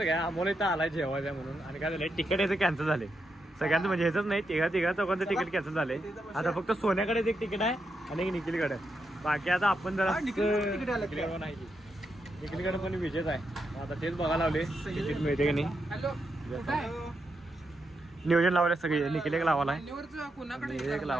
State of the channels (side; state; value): both; normal; correlation 0.84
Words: का आम्हाला इथं आलाय जेवायचा म्हणून आणि काय झालंय तिकीट याचं कॅन्सल झाले सगळ्यांचं म्हणजे ह्याच नाही तिघा चौघांचं तिकीट कॅन्सल झाले आता फक्त सोन्याकडे एक तिकीट आहे आणि एक निखिलकडे बाकी आता आपण जरा नाही निखिलकडे पण विजेच आहे आता तेच बघायला लावले तिकीट मिळते की नाही हॅलो नियोजन लावले सगळे निखिल एक लावाला कोणाकडे एक